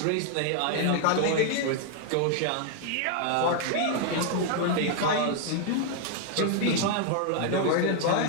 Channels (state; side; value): different; both; correlation 0.00